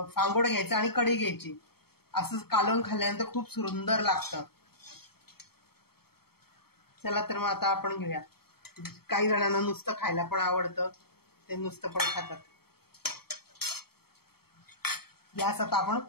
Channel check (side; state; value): right; late; 0.95 ms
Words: फांगोड घ्यायचं आणि कढी घ्यायची, असं कालवून खाल्ल्यानंतर खूप सुंदर लागतं. चला तर मग आता आपण घेऊया. काही जणांना नुसतं खायला पण आवडतं, ते नुसतं पण खातात. गॅस आता आपण